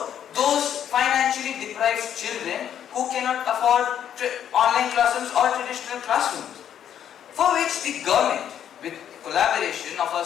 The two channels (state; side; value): quieter; right; 9.7 dB